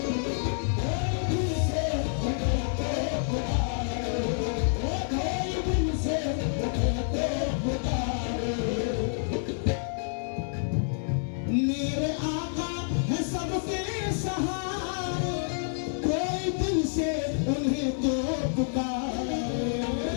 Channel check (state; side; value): silent; right; digital silence